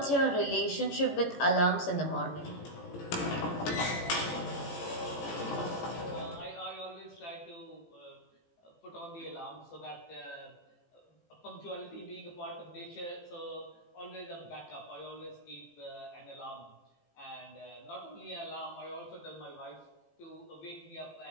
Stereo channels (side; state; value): right; late; 18 ms